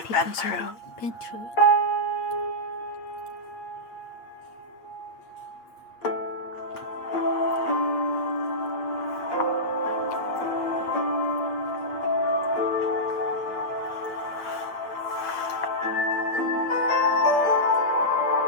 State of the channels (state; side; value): late; right; 8.8 ms